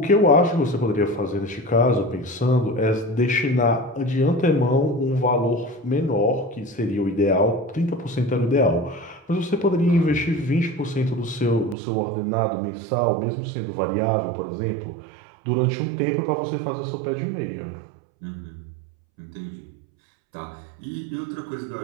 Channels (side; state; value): left; drops out; at 11.8 s